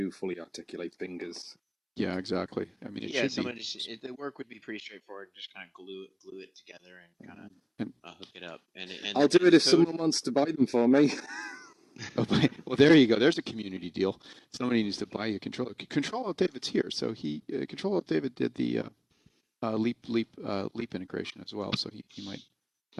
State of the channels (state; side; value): identical; both; correlation 1.00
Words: fully articulate fingers. Yeah, exactly. I mean, it should be. The work would be pretty straightforward. Just kind of glue it together and kind And of hook it up. And I'll do it the if code. someone wants to buy them for me. Oh, well, there you go. There's a community deal. Somebody needs to buy you a controller. Control Alt David's here, so Control Alt David did the leap integration as well, so he might